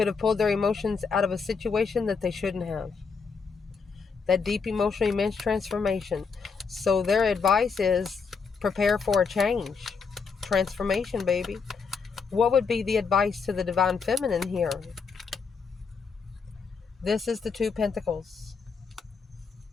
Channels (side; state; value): right; quieter; 5.3 dB